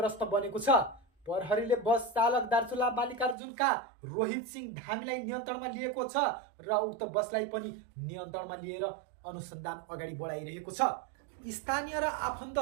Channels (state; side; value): drops out; left; at 3.4 s